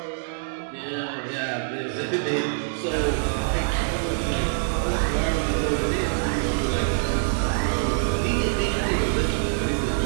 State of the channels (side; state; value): left; silent; 59 dB below the other